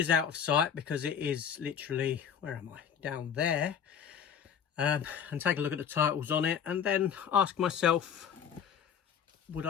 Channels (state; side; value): quieter; right; 7.9 dB